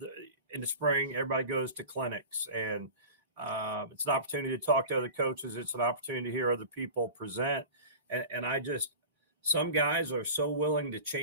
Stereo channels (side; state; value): both; inverted; correlation -0.34